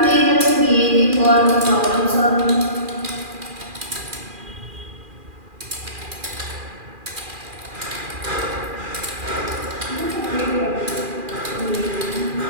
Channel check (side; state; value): left; late; 2.4 ms